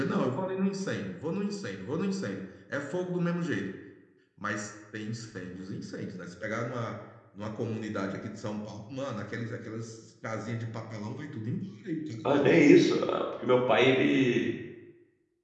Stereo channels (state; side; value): identical; both; correlation 1.00